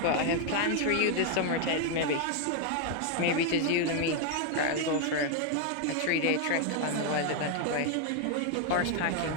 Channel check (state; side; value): different; both; correlation 0.00